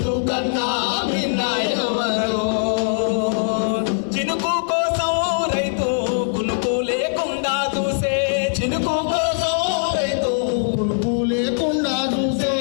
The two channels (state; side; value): silent; right; digital silence